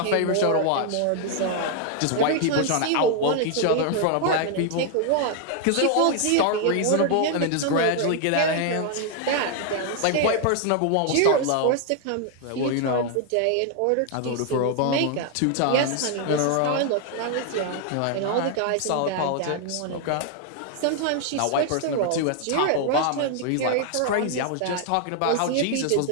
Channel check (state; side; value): different; both; correlation 0.00